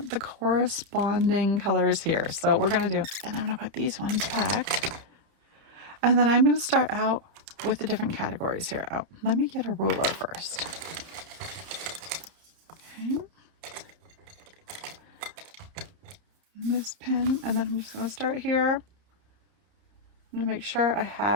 the corresponding colors here. So we're going to do, and I'm going to put these ones back. And then I'm going to start out with the different categories here. Oh, let me get a ruler first. Okay. This pen, and then I'm just going to start here. I'm going to make sure I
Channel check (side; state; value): left; late; 30 ms